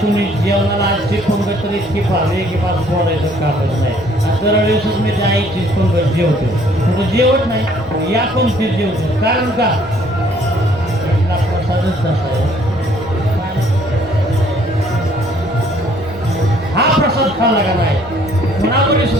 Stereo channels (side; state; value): right; noise; rumble, 22 dB below the sound